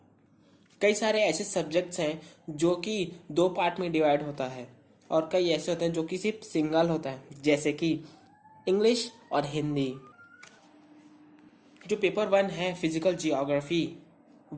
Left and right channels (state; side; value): identical; both; correlation 1.00